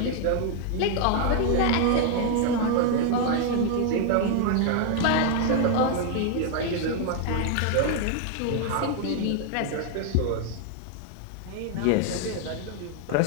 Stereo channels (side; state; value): both; different; correlation 0.00